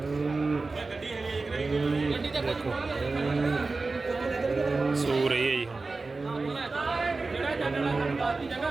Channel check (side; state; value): left; quieter; 3.7 dB